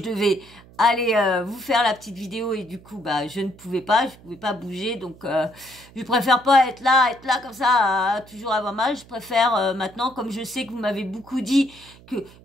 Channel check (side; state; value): right; noise; hum, 23 dB below the sound